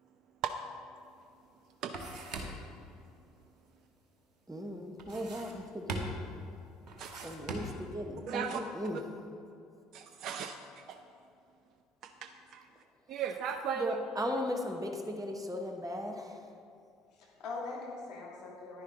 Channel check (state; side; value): normal; both; correlation 0.60